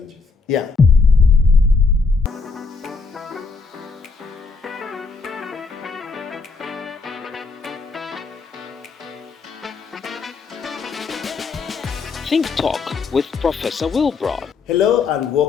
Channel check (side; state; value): right; quieter; 4.5 dB